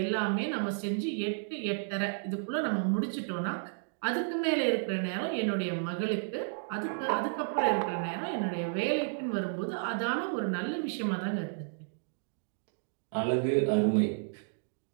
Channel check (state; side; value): silent; left; digital silence